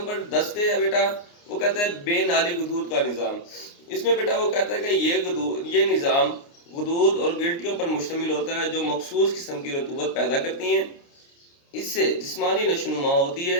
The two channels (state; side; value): late; right; 29 ms